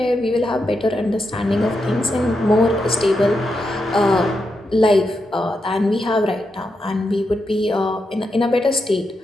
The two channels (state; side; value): normal; both; correlation 0.85